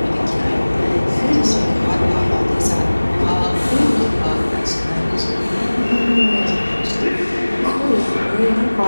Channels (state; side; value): inverted; both; correlation -1.00